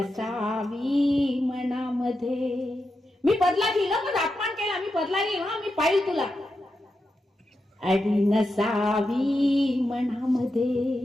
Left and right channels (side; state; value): both; normal; correlation 0.88